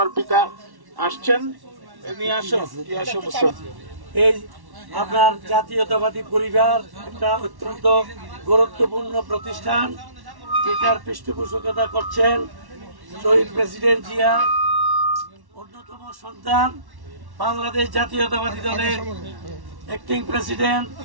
পিতা আসছেন। এই আপনার জাতীয়তাবাদী পরিবার একটা অত্যন্ত গুরুত্বপূর্ণ প্রতিষ্ঠান, যেটার পৃষ্ঠপোষকতা করছেন শহীদ প্রেসিডেন্ট জিয়া অন্যতম সন্তান, বাংলাদেশ জাতীয়তাবাদী দলের অ্যাক্টিং প্রেসিডেন্ট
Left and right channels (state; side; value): late; left; 1.1 ms